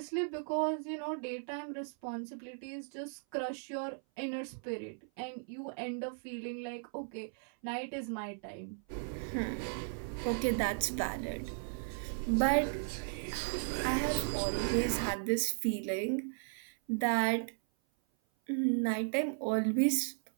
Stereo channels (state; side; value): silent; left; 54 dB below the other